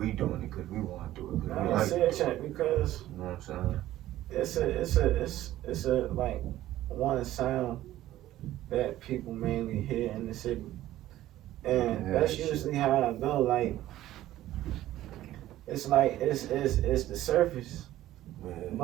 doing it because we want to do it. I say it because you know what I'm saying? it's a like one sound that people mainly hear in the city, and that's usually how I go. Like it's the surface,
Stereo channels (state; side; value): quieter; left; 14.3 dB